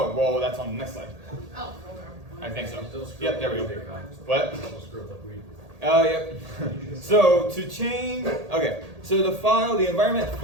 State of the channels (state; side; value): late; left; 1.8 ms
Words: well, that's on the next slide. Oh, okay. I think so. Still screw Yep, up there we like go. we do. What? Still screw up like we do. Oh, yep. So to change, okay. So the environment